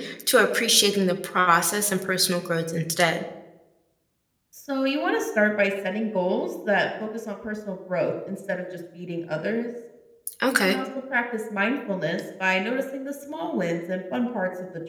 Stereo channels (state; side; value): identical; both; correlation 1.00